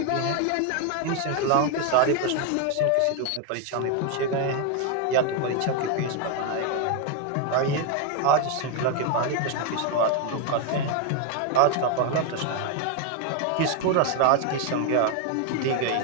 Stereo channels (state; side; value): different; both; correlation 0.01